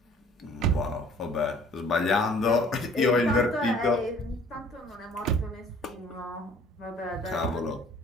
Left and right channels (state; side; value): normal; both; correlation 0.54